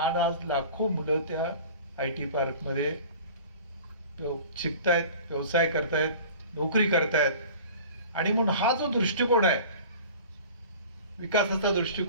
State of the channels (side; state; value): both; inverted; correlation -0.42